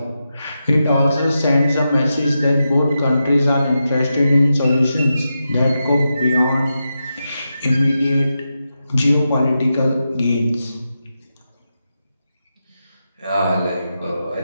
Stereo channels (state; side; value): inverted; both; correlation -0.89